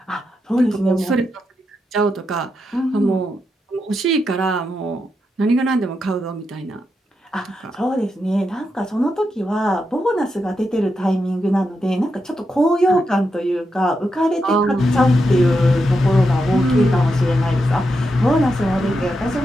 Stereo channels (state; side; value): normal; both; correlation 0.85